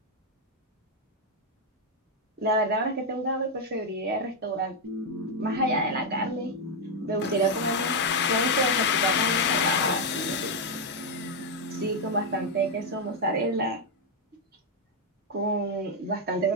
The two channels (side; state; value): both; normal; correlation 0.01